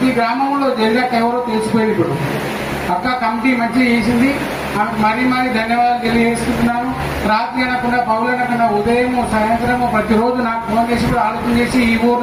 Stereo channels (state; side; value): identical; both; correlation 1.00